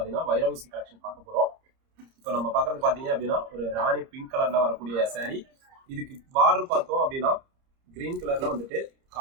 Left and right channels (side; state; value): left; late; 30 ms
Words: வைரவுசி கலெக்ஷன் பார்க்க போறோம். இப்போ நம்ம பார்க்கறது பார்த்தீங்க அப்படின்னா ஒரு ராணி பிங்க் கலர்ல வரக்கூடிய சாரி. இதுக்கு பார்டர் பார்த்தோம் அப்படின்னா கிரீன் கலர்ல வந்துட்டு